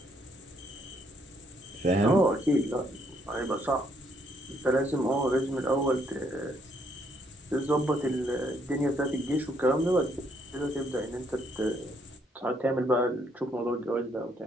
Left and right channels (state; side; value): normal; both; correlation 0.71